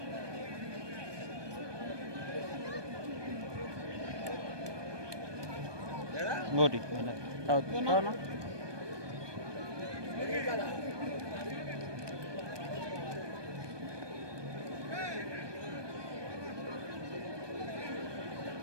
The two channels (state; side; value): late; left; 1.2 ms